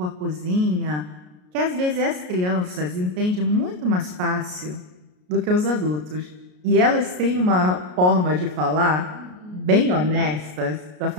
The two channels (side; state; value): left; late; 33 ms